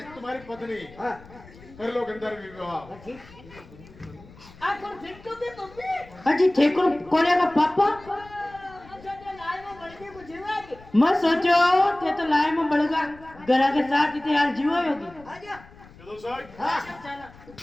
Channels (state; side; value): noise; left; rumble, 22 dB below the sound